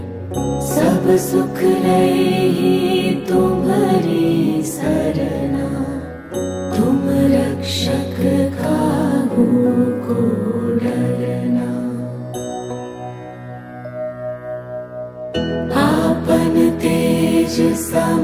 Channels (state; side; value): identical; both; correlation 1.00